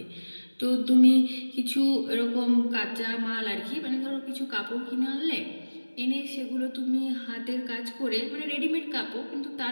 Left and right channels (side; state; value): both; inverted; correlation -1.00